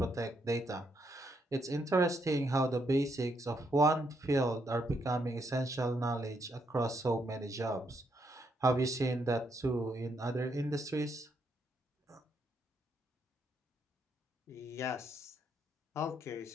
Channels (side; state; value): both; normal; correlation 0.76